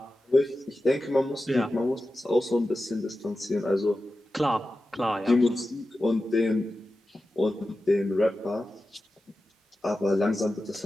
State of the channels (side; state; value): both; normal; correlation 0.93